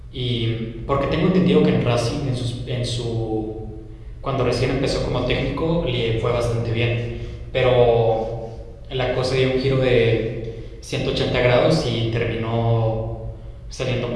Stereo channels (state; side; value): identical; both; correlation 1.00